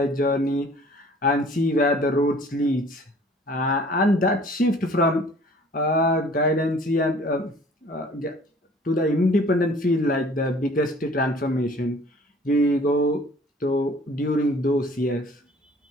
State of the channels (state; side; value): normal; both; correlation 0.52